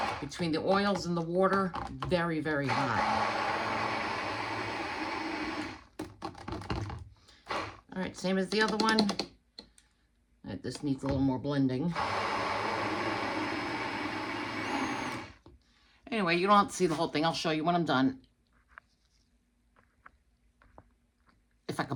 Between the oils and the water, very, very hot. All right, same as the other one. All right, this needs a little more blending. Anyway, you don't have to see the whole thing. I'll show you when I'm done. If I can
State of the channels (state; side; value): identical; both; correlation 1.00